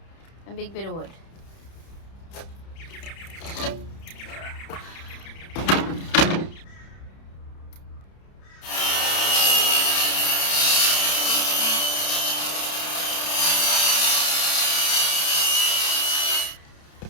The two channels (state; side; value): late; right; 30 ms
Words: and big bit of wood.